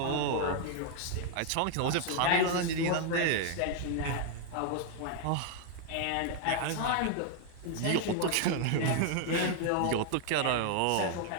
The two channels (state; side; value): different; both; correlation 0.00